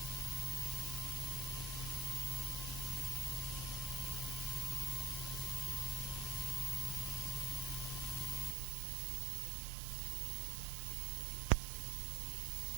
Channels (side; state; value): left; drops out; at 8.6 s